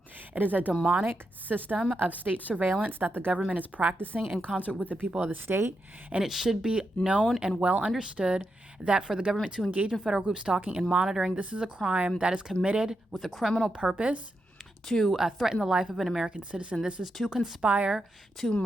It is a demonic system of state surveillance that the government is practicing in concert with the people of the state. And it should be known and well understood that for the government to engage in federal group stalking and monitoring, this is a crime that is committed with a criminal purpose to threaten the life of an American citizen. This is to conspire to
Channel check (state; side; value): normal; both; correlation 0.85